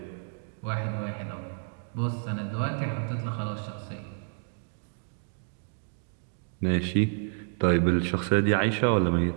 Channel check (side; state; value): left; silent; 58 dB below the other